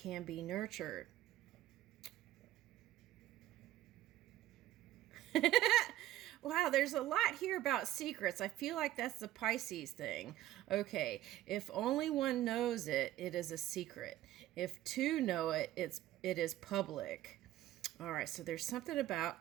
be nurtured. Wow, there's a lot here about secrets. I feel like that's the Pisces thing. Okay, if only one knows it, it is a secret. If two know it, it is public. All right, so there's something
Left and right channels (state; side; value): quieter; left; 14.3 dB